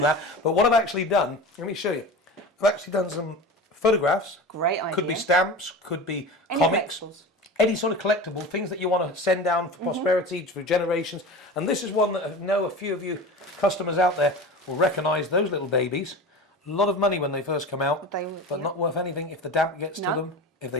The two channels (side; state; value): both; normal; correlation 0.31